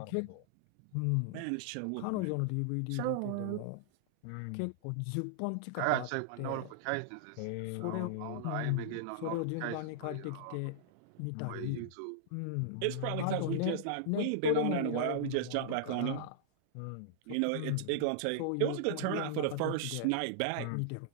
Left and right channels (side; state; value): both; different; correlation -0.01